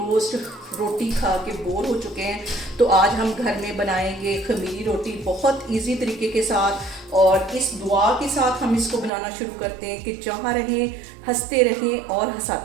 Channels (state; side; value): drops out; left; at 9.1 s